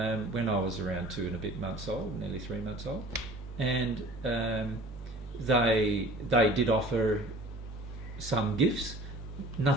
I was around 2 and a bit months old, nearly 3 months old, and they did offer some gifts,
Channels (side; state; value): right; noise; hum, 11 dB below the sound